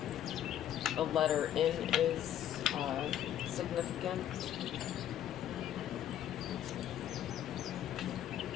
The letter N is significant.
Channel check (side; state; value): right; quieter; 11.0 dB